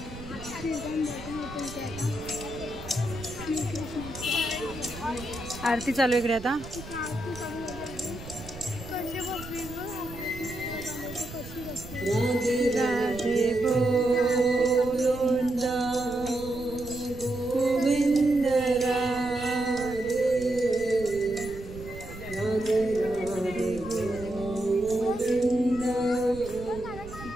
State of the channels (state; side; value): noise; right; rumble, 14 dB below the sound